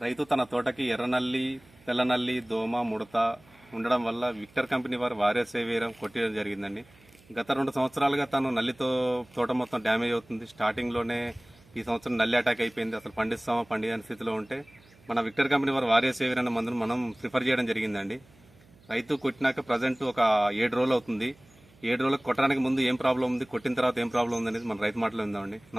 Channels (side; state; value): right; noise; hum, 28 dB below the sound